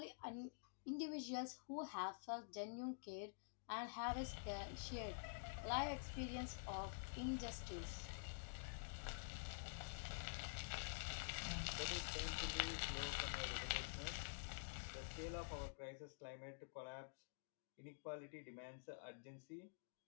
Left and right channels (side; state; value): right; silent; digital silence